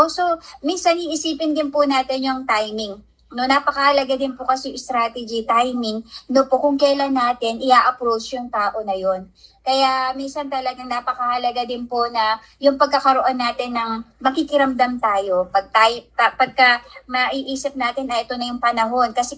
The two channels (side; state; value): both; identical; correlation 1.00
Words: so minsan iisipin din po natin yung timing. No, napakahalaga din po kasi yung strategy, timing, no po, kung kailan natin i-approach yung tao na yon. Kaya minsan talagang napakahalaga din po na yung pagkakaroon natin ng makikiramdam tayo. Pagka maiisip natin na ito na yung panahon, kasi